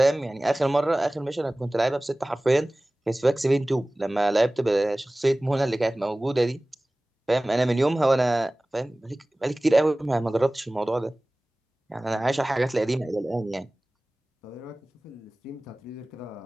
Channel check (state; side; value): normal; both; correlation 0.98